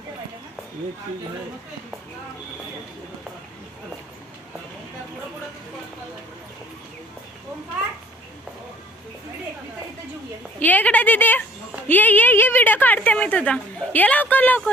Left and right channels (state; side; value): normal; both; correlation 0.54